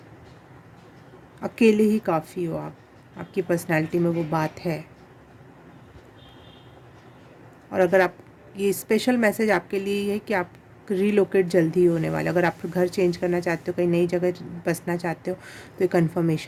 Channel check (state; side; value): identical; both; correlation 1.00